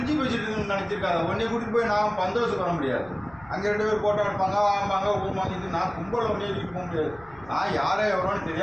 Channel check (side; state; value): left; noise; rumble, 25 dB below the sound